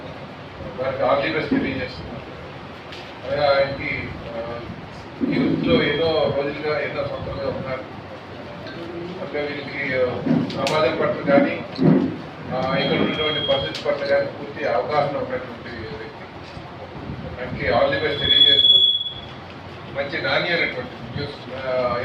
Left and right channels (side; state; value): both; identical; correlation 1.00